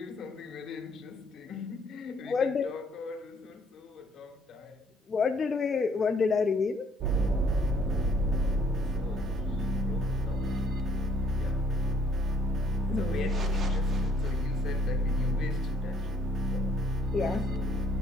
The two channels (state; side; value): normal; both; correlation 0.64